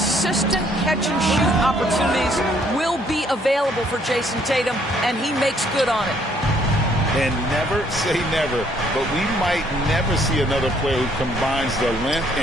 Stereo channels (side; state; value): both; normal; correlation 0.65